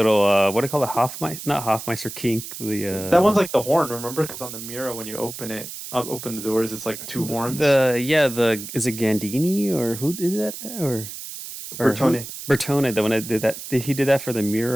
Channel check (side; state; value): right; noise; hiss, 10 dB below the sound